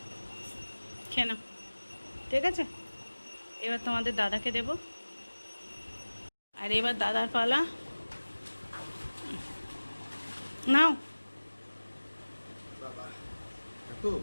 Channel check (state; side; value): inverted; both; correlation -1.00